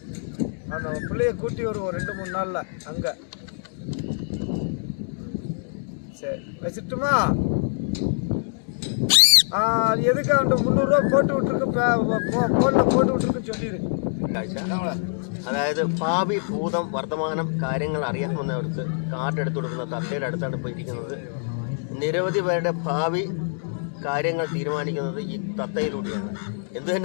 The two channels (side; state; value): right; silent; digital silence